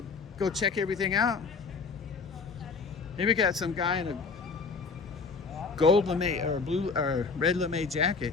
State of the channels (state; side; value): quieter; right; 4.7 dB